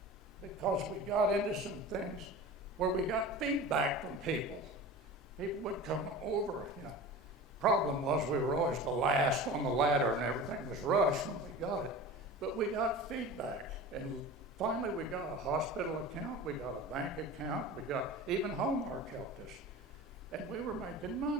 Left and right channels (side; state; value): both; normal; correlation 0.35